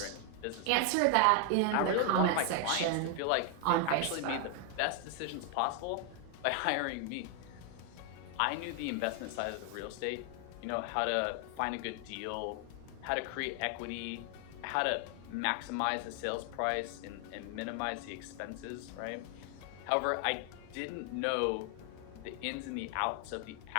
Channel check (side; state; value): both; different; correlation 0.00